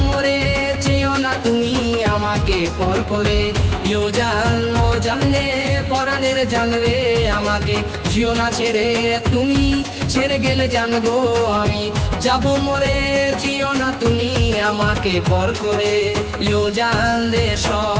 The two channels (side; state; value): both; identical; correlation 1.00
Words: মরে চেয়েও না তুমি আমাকে পর করে জানলে পরাণের জানলে আমাকে জিও না ছেড়ে তুমি ছেড়ে গেলে জানবো আমি যাব মরে চেয়েও না তুমি আমাকে পর করে জানলে